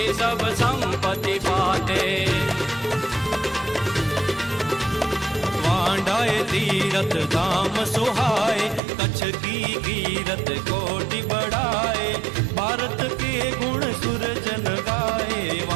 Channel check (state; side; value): drops out; left; at 8.8 s